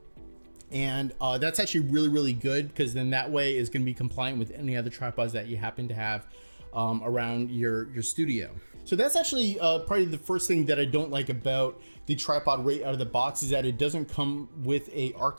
And that's actually really, really good, because then that way is going to be compliant with any other tripods that you happen to have around your studio. So that's actually probably the first thing that I don't like about the tripod right out of the box, is that it doesn't come with a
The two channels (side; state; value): both; inverted; correlation -1.00